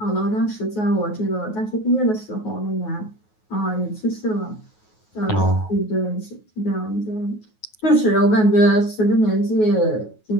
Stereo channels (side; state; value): right; late; 9.4 ms